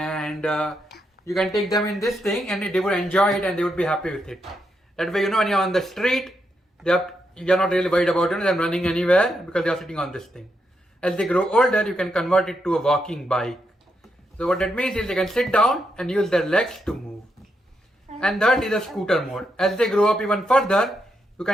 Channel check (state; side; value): normal; both; correlation 0.81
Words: you can take them in this thing and they would enjoy it and they would be happy with it. That way, when you're on the street, you're not really worried about them running anywhere because they are sitting on this thing. As they grow older, you can convert it to a walking bike. So what that means is they can sit down and use their legs to move. And that is a scooter mode. As they grow up even further, you